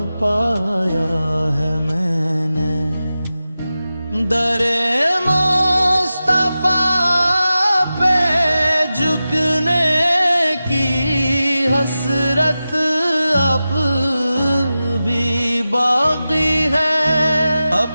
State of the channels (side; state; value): both; inverted; correlation -0.94